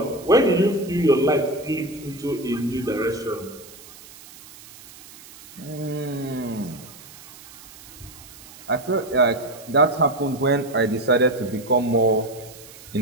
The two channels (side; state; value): right; noise; hiss, 19 dB below the sound